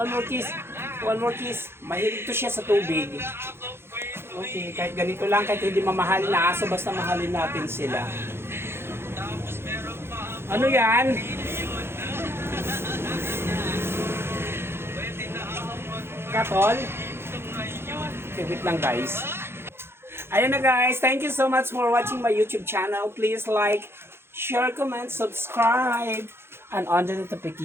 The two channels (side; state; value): left; late; 0.12 ms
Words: kiss. Mahilig to siya sa tubig. Okay, kahit ganito lang, kahit hindi mamahalin na aso, basta mahalin natin sila. Ano yan? Katol? Okay, wait lang guys. Ayan na guys, thank you so much for watching my YouTube channel. Please like, share, comment, subscribe, and on the